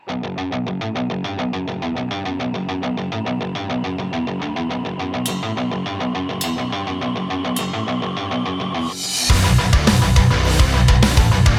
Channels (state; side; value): identical; both; correlation 1.00